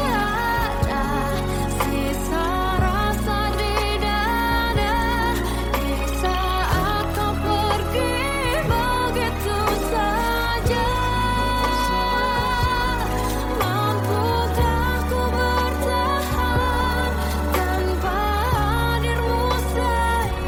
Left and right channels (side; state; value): both; identical; correlation 1.00